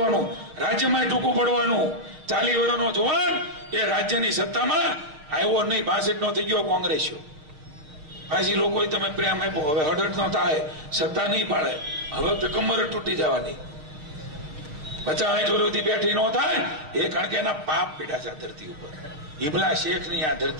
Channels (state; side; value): late; left; 6.5 ms